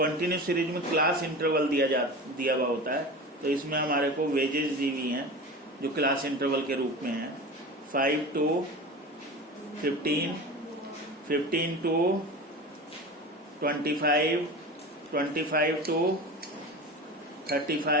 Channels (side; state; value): both; normal; correlation 0.31